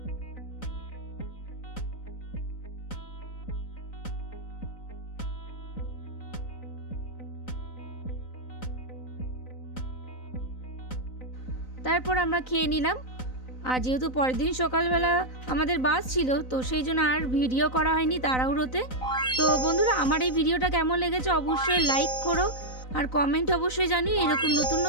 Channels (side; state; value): right; late; 3.9 ms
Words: তারপর আমরা খেয়ে নিলাম, আর যেহেতু পরের দিন সকালবেলা আমাদের বাস ছিল, তো সেই জন্য আর ভিডিও করা হয়নি তাড়াহুড়োতে। তো বন্ধুরা, আমার এই ভিডিওটা কেমন লেগেছে অবশ্যই লাইক করো, আর কমেন্ট অবশ্যই জানিও এরকম নতুন